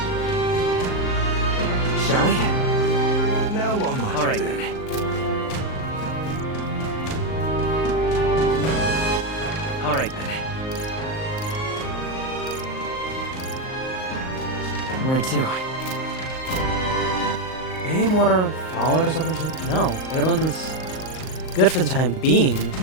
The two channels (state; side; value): late; right; 38 ms